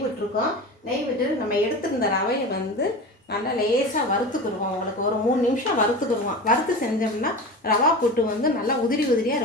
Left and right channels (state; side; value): normal; both; correlation 0.30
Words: விட்டுருக்கோம். நெய் விட்டு நம்ம எடுத்துருந்த ரவையை வந்து நல்லா லேசாக வறுத்துக்குருவோம். உங்களுக்கு ஒரு 3 நிமிஷம் வறுத்துக்குருவோம். வறுத்து செஞ்சோம்னா ரவா புட்டு வந்து நல்லா உதிரியாக